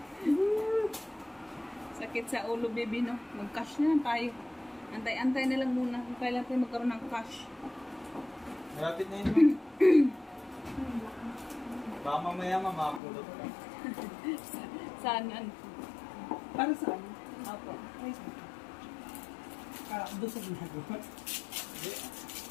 Sakit sa ulo, baby, no? Mag-cash na lang tayo. Antay-antay na lang muna kung kailan tayo magkaroon ng cash. Malapit na yun. Baka mamaya mamapulot ka. Saan? Para saan? Opo. Doon sa ginagawa.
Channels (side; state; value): right; drops out; at 13.0 s